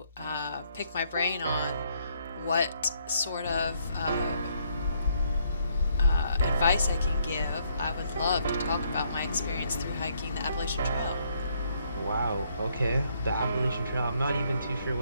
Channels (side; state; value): both; inverted; correlation -0.71